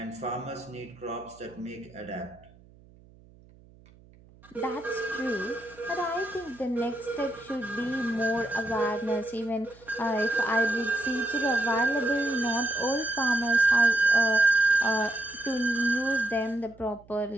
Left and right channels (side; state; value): right; noise; hum, 26 dB below the sound